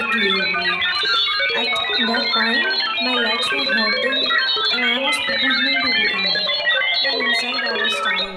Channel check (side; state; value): both; identical; correlation 1.00